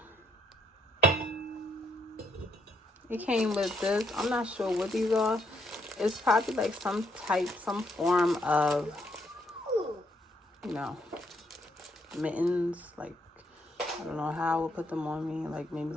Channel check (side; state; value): both; normal; correlation 0.73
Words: It came with this. I'm not sure what these are. It's probably like some form of, you know, mittens. Like, I don't know how I would put them on me. Like, maybe